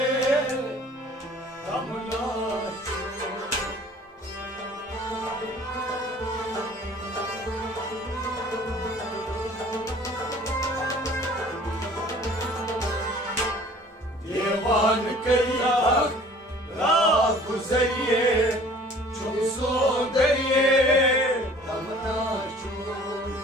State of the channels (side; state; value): both; normal; correlation 0.50